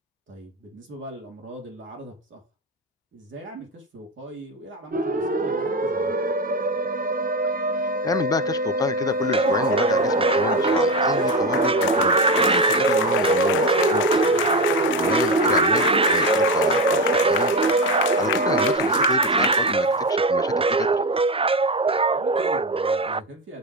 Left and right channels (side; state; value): both; normal; correlation 0.16